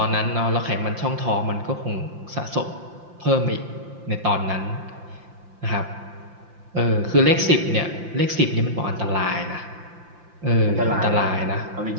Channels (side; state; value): left; late; 5.8 ms